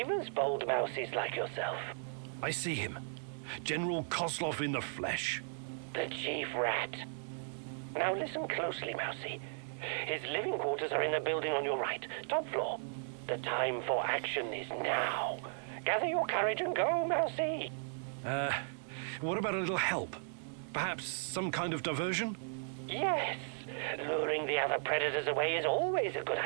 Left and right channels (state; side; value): silent; left; digital silence